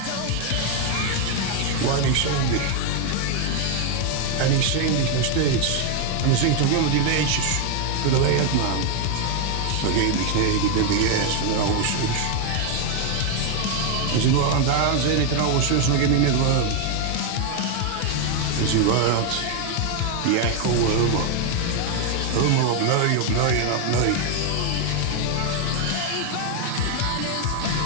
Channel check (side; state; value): both; different; correlation 0.01